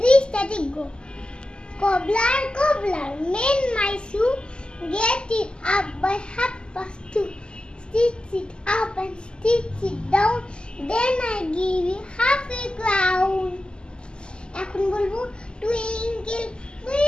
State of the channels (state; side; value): late; right; 0.050 ms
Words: static, go. Cobbler, cobbler, mend my shoe, get it up by 2:30. Stitch it up and stitch it down, then I give you half a crown. এখন বলবো, twinkle,